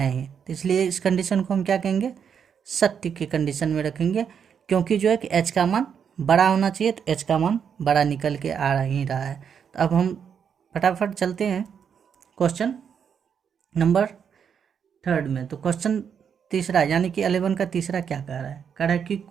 ही, तो इसलिए इस कंडीशन को हम क्या कहेंगे, सत्य की कंडीशन में रखेंगे, क्योंकि जो है कि h का मान बड़ा होना चाहिए, तो h का मान बड़ा निकल के आ ही रहा है। तो अब हम फटाफट चलते हैं क्वेश्चन नंबर 3 में। तो क्वेश्चन तीसरा यानी कि 11 का तीसरा क्या कह रहा है, कह रहा है कि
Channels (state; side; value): quieter; left; 7.4 dB